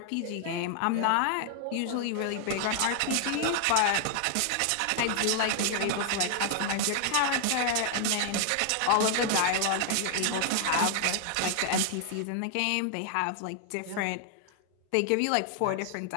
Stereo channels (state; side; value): different; both; correlation 0.00